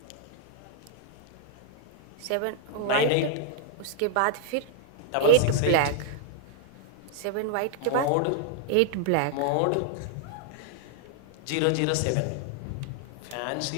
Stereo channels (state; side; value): different; both; correlation 0.00